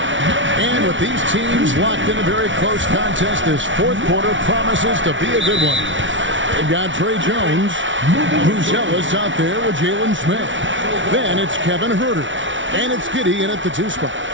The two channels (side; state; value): left; late; 0.56 ms